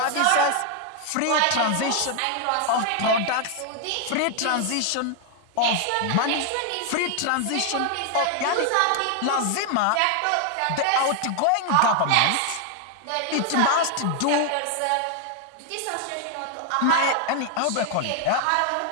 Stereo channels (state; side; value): different; both; correlation 0.00